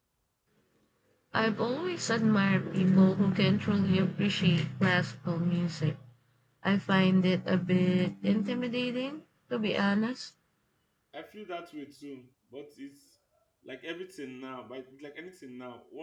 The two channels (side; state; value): both; identical; correlation 1.00